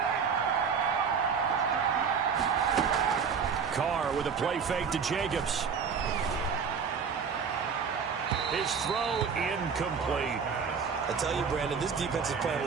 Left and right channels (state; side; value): quieter; left; 6.2 dB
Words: Carr with a play fake to Jacobs. His throw incomplete. I tell you, Brandon, this defense is playing